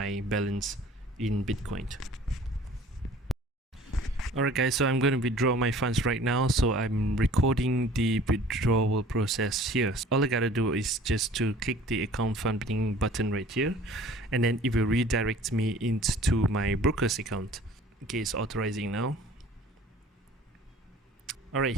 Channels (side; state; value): both; normal; correlation 0.49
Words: balance in Bitcoin. Alright guys, so I'm going to withdraw my funds right now, so I'm recording the withdrawal process here. All I gotta do is just to click the account funding button right here, and then it will redirect me into my broker's account. Okay, it's authorizing now. Alright,